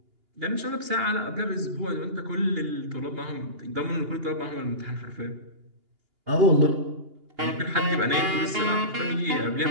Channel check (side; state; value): left; late; 2.8 ms